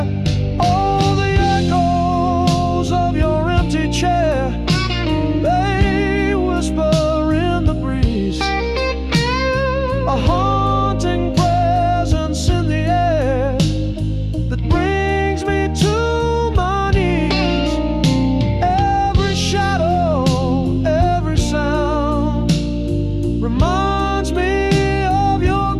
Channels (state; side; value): identical; both; correlation 1.00